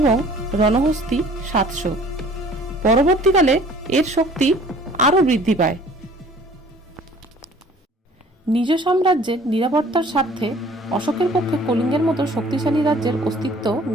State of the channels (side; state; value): both; normal; correlation 0.52